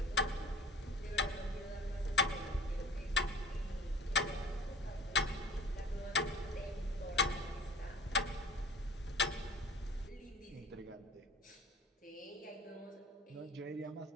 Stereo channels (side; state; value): both; normal; correlation 0.45